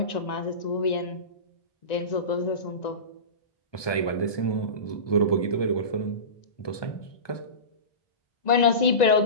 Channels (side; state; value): right; late; 1.2 ms